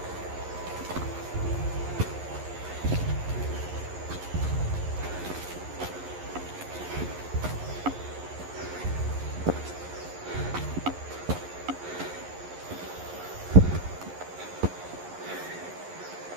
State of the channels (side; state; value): left; late; 11 ms